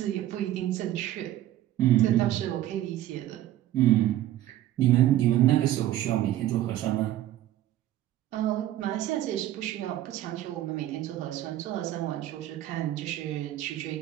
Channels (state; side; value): quieter; left; 13.5 dB